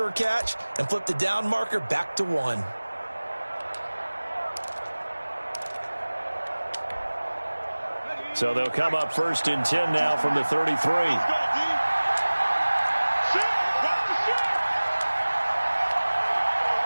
catch and flip the down marker back to 1. So they'll come up 1st and 10 now from the 33.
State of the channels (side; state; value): both; inverted; correlation -1.00